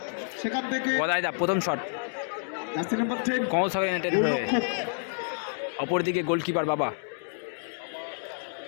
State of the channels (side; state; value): right; silent; digital silence